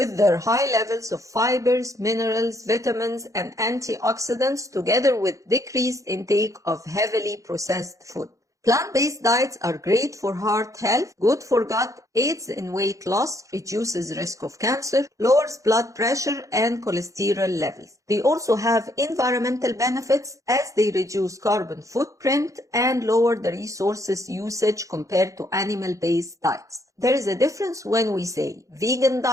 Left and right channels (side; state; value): left; late; 0.16 ms